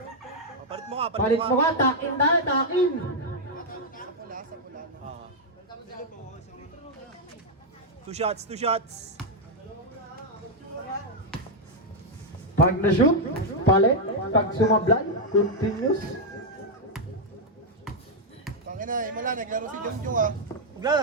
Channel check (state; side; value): normal; both; correlation -0.01